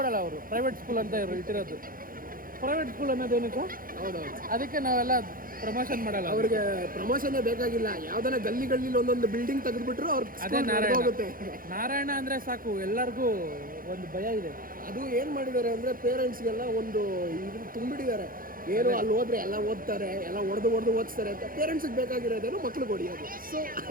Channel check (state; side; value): late; left; 0.41 ms